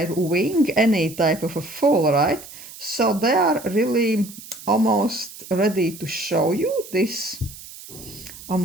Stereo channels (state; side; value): noise; right; hiss, 16 dB below the sound